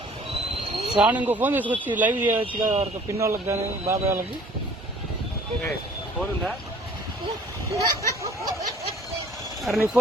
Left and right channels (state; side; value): normal; both; correlation 0.53